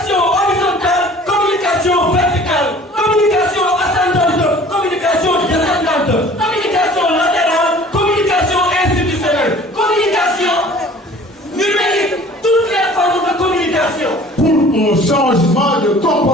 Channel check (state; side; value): normal; both; correlation 0.48